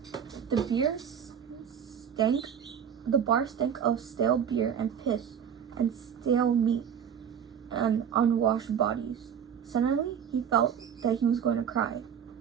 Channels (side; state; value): left; quieter; 8.2 dB